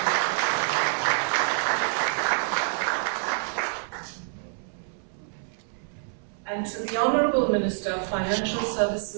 And to the Honorable Minister of Financial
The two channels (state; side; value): silent; left; 60 dB below the other